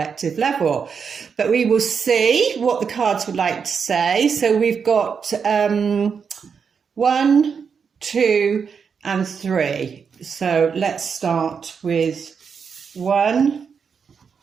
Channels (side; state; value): left; quieter; 6.2 dB